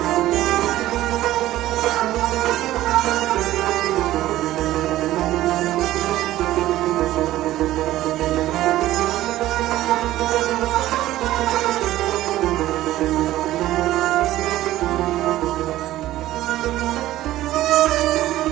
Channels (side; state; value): left; quieter; 14.9 dB